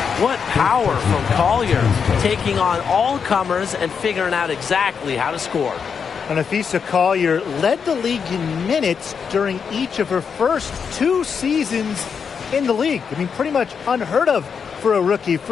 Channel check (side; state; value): right; quieter; 6.4 dB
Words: What power from Collier, taking on all comers and figuring out exactly how to score. And Afisa Collier led the league in minutes during each of her first 2 seasons in the league. I mean, pretty much unheard of for a rookie,